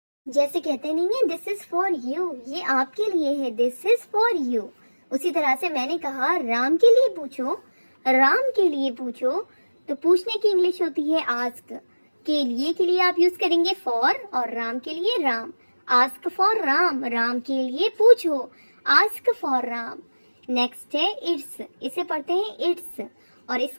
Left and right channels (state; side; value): inverted; both; correlation -1.00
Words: जैसे कहते नहीं है दिस इज फॉर यू, ये आपके लिए है, दिस इज फॉर यू। उसी तरह से मैंने कहा राम के लिए पूछो, राम के लिए पूछो, तो पूछने की इंग्लिश होती है आस्क। के लिए आप यूज करेंगे फॉर और राम के लिए राम। आस्क फॉर राम, राम के लिए पूछो, आस्क फॉर राम। नेक्स्ट है इट्स, इसे पढ़ते हैं इट्स और